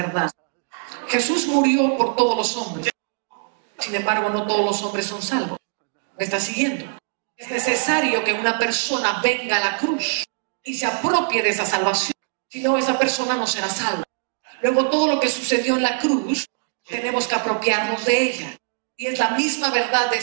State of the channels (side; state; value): left; silent; digital silence